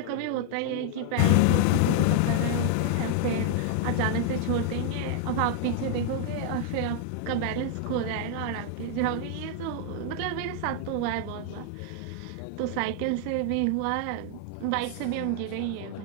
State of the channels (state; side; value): different; both; correlation 0.00